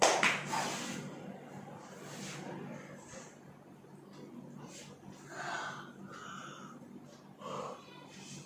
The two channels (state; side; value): identical; both; correlation 1.00